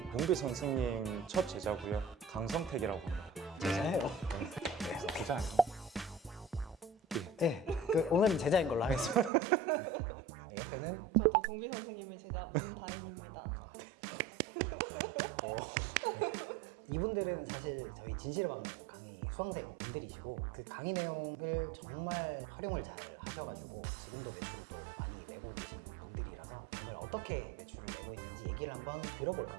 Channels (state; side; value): drops out; left; at 9.3 s